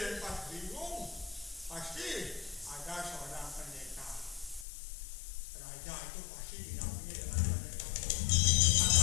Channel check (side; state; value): right; drops out; at 4.7 s